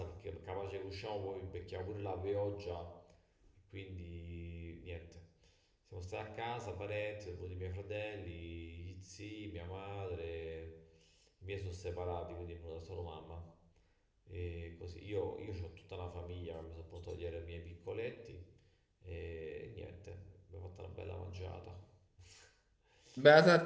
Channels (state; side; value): identical; both; correlation 1.00